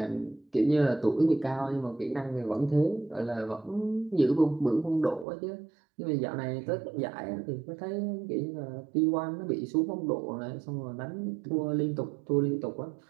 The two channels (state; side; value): drops out; left; at 5.2 s